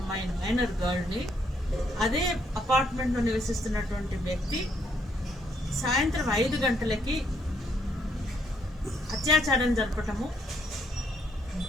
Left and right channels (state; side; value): normal; both; correlation 0.71